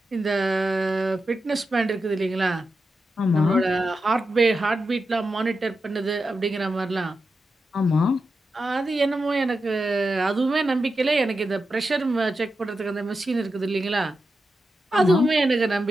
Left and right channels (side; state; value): both; normal; correlation 0.89